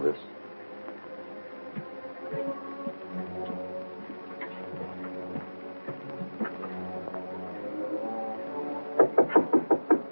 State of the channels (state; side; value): inverted; both; correlation -1.00